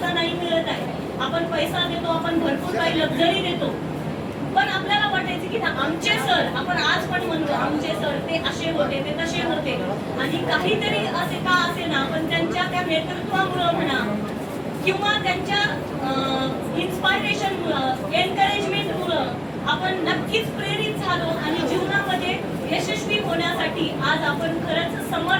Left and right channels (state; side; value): identical; both; correlation 1.00